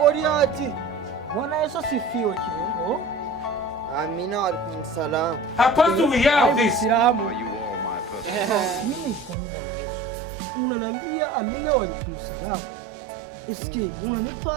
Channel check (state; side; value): drops out; left; at 9.3 s